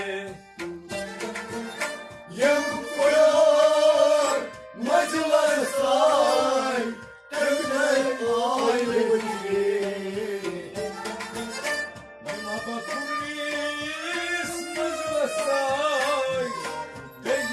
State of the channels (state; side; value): identical; both; correlation 1.00